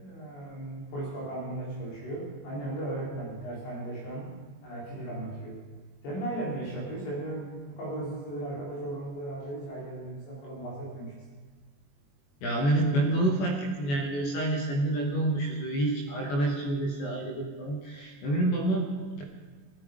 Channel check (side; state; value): right; late; 21 ms